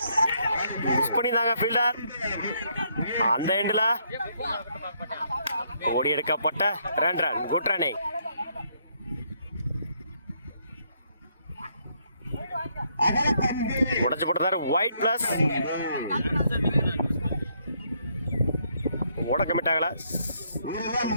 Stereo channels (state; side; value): inverted; both; correlation -0.72